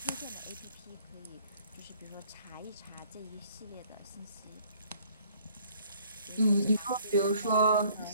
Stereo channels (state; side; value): inverted; both; correlation -0.59